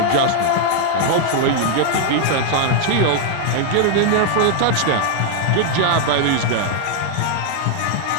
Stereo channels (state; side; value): different; both; correlation 0.00